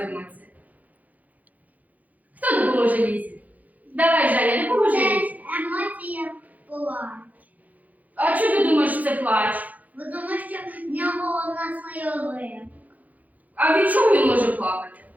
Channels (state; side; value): late; left; 0.078 ms